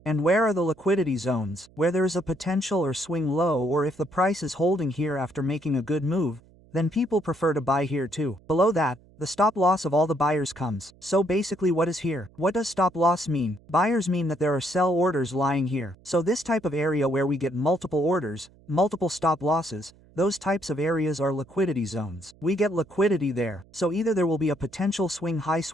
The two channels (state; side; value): noise; right; hum, 27 dB below the sound